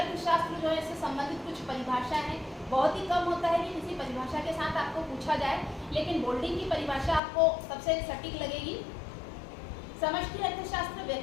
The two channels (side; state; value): right; drops out; at 7.2 s